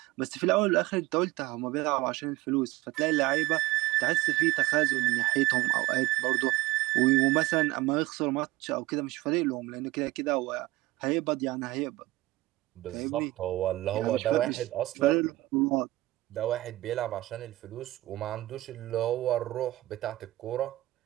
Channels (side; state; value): left; quieter; 18.1 dB